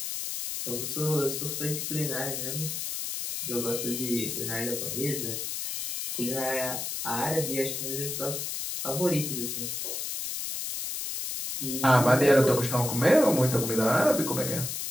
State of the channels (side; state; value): left; noise; hiss, 4 dB below the sound